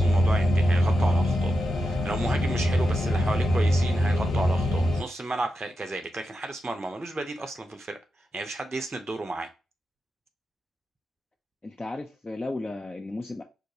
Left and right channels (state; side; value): normal; both; correlation 0.88